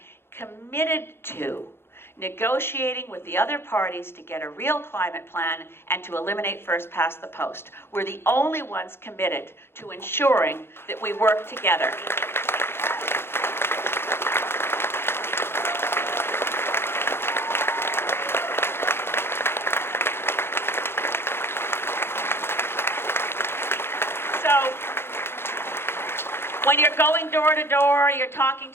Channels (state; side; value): late; right; 0.11 ms